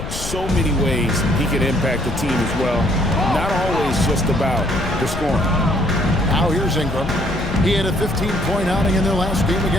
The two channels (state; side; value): noise; left; rumble, 8 dB below the sound